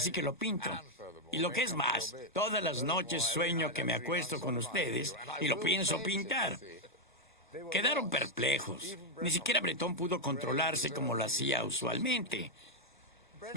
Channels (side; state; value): both; normal; correlation 0.00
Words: que lo pinto. Y lo que es más, todas las noches sueño que me acuesto con ustedes y lo pienso pintar. Quedaron perplejos. Ni siquiera Breton pudo controlarse como lo hacía usualmente.